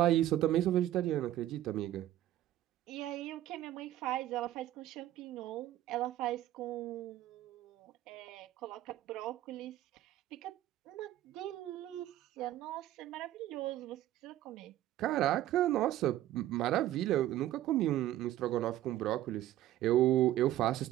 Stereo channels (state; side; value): quieter; left; 13.7 dB